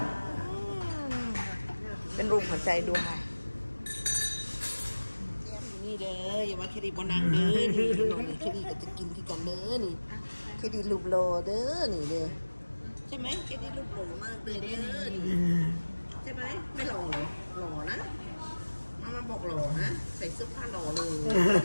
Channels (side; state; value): both; inverted; correlation -1.00